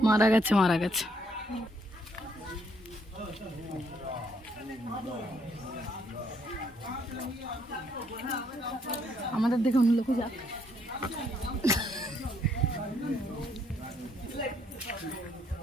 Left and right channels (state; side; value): normal; both; correlation 0.70